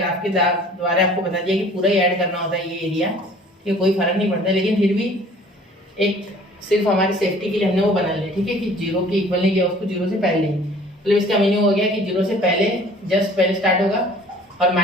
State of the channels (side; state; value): both; normal; correlation 0.51